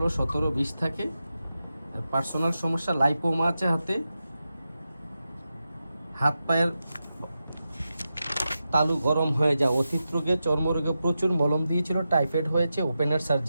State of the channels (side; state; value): both; inverted; correlation -0.90